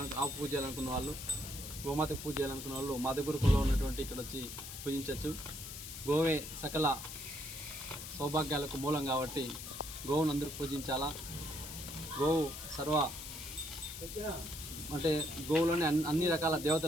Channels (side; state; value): left; noise; hiss, 9 dB below the sound